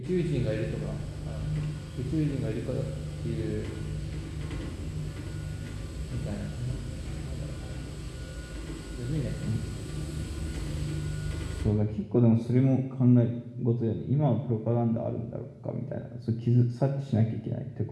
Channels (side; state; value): both; identical; correlation 1.00